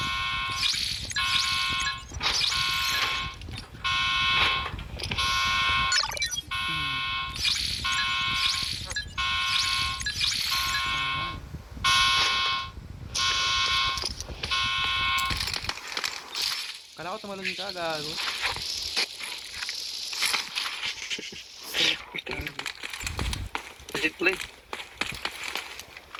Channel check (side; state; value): both; identical; correlation 1.00